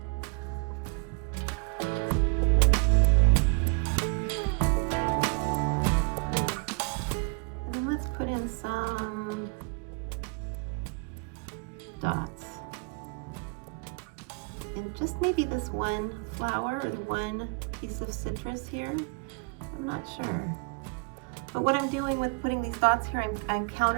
And then let's put in some dots. And just maybe this one flower or the one piece of citrus here. I'm not sure. But what I'm doing with putting these dots here, I'm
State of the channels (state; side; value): quieter; left; 34.8 dB